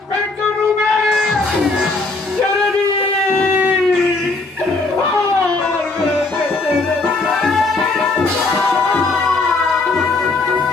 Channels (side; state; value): right; quieter; 3.5 dB